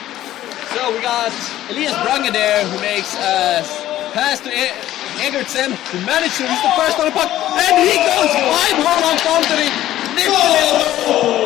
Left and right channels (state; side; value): quieter; right; 13.6 dB